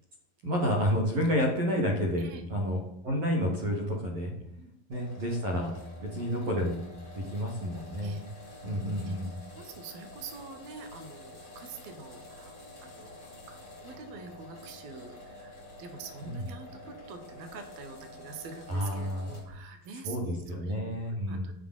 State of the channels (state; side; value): late; left; 12 ms